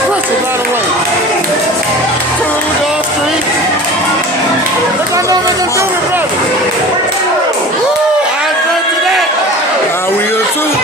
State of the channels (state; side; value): normal; both; correlation 0.38